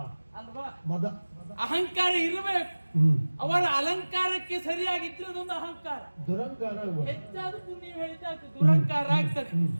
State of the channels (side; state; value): both; inverted; correlation -1.00